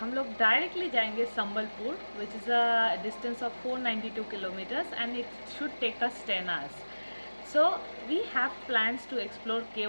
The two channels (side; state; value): both; inverted; correlation -1.00